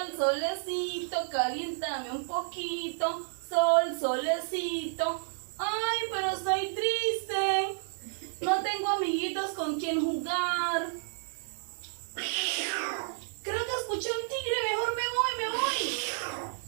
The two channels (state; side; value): silent; left; digital silence